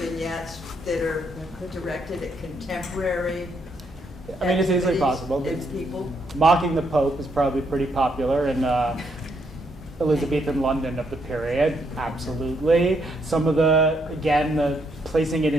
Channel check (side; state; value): both; normal; correlation 0.75